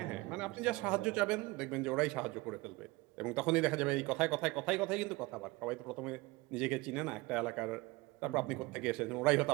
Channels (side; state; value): left; quieter; 22.4 dB